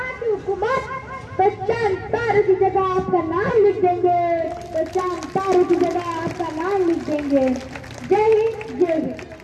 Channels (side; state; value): both; identical; correlation 1.00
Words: की हुकूमत तो चांद तारों की जगह आपका नाम लिख देंगे. तो चांद तारों की जगह आपका नाम लिख देंगे. जय हिंद जय हिंद.